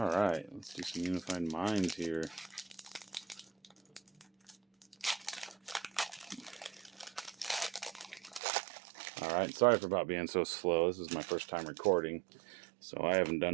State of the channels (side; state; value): left; drops out; at 8.4 s